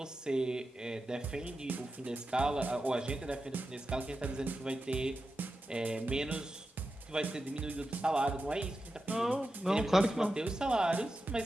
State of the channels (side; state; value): both; normal; correlation 0.91